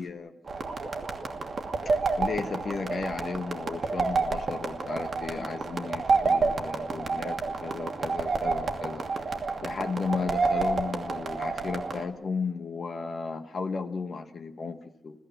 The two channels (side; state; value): both; normal; correlation 0.86